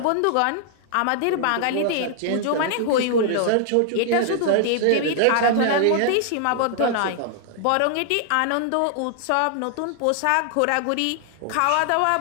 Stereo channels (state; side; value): different; both; correlation 0.00